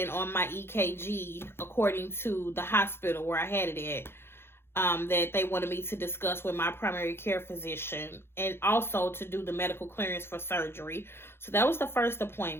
on my EKG, according to the hospital where I had it at, that they wanted me to discuss with my primary care physician, and also to do the medical clearance for surgery. So that was the first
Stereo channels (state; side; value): late; right; 0.11 ms